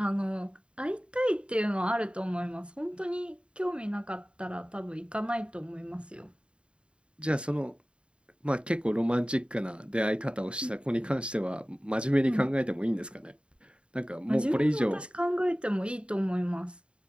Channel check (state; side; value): late; left; 0.055 ms